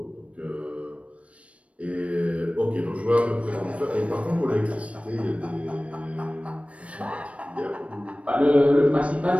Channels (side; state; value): left; late; 0.063 ms